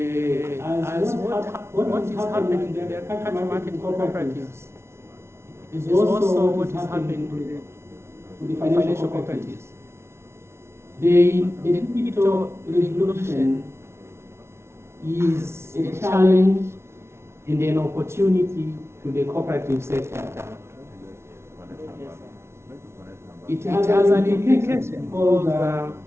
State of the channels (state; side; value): late; left; 0.13 ms